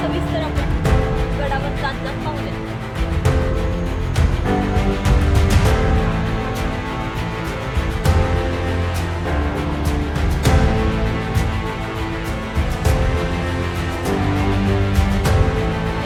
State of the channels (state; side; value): identical; both; correlation 1.00